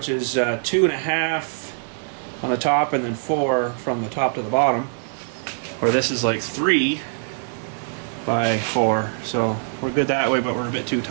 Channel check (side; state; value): left; silent; digital silence